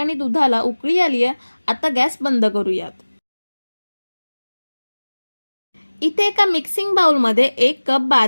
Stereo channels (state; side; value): inverted; both; correlation -1.00